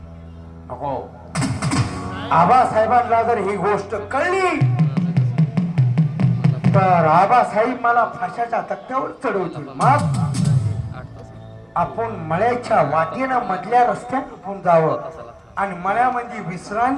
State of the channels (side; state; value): both; identical; correlation 1.00